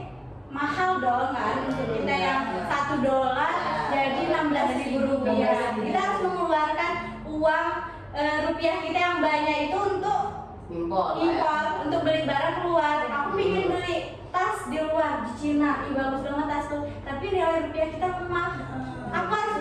mahal dong kan, untuk kita yang $1 jadi 16.000 rupiah. Kita harus mengeluarkan uang rupiah kita yang banyak itu untuk Impor, untuk beli barang keluar. Aku ingin beli tas di luar di Cina, bagus banget tas tuh, tapi nilai rupiah kita lemah. Aku harus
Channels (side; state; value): both; identical; correlation 1.00